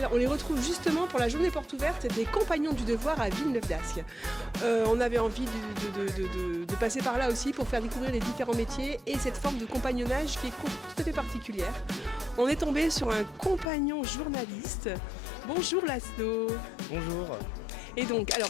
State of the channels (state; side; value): drops out; right; at 13.7 s